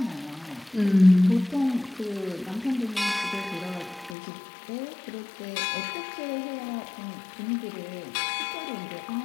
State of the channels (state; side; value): drops out; right; at 4.2 s